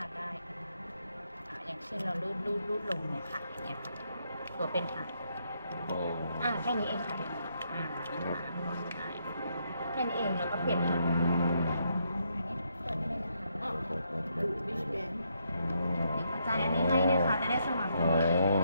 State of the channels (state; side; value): inverted; both; correlation -0.76